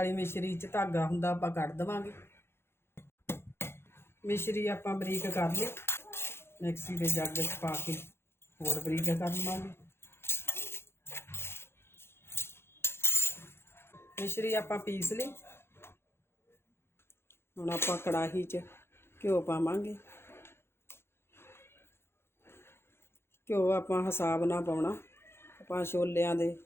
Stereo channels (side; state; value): right; late; 0.12 ms